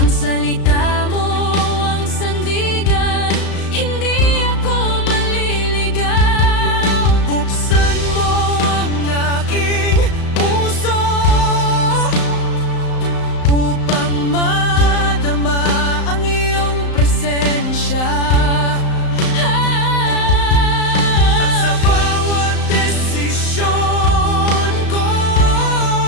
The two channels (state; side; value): late; right; 35 ms